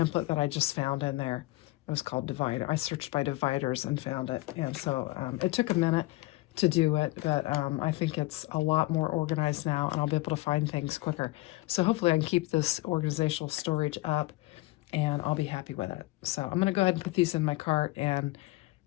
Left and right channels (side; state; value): right; quieter; 19.8 dB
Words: that I just found in there. It was called Divider. I searched by dividers and found it. And so it took a minute to do it, but I think it's a lot more organized now, and I'll be able to find things quicker. So hopefully I can keep this organizational storage up, and I'll be happy with it. So I'm going to go ahead and put these in my cart, and